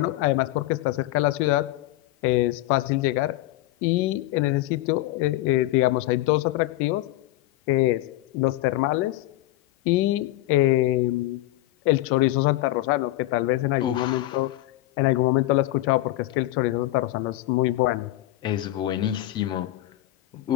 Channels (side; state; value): right; quieter; 16.3 dB